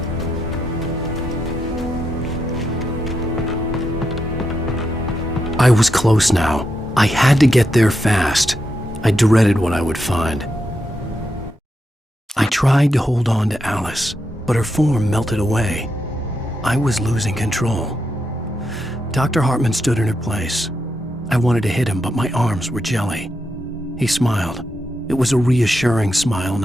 I was close now. I had to get there fast. I dreaded what I would find. I tried to hold on to Alice, but her form melted away. I was losing control. Dr. Hartman stood in her place. I wanted to hit him, but my arms were jelly. He smiled. It was a reassuring smile,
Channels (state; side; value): normal; both; correlation 0.84